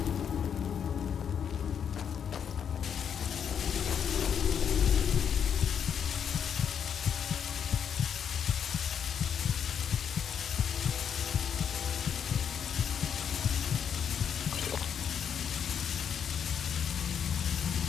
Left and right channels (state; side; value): quieter; right; 7.9 dB